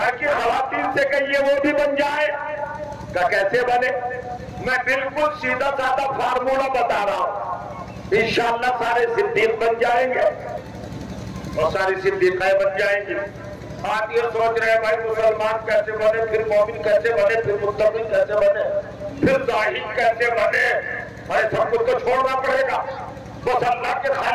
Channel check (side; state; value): both; identical; correlation 1.00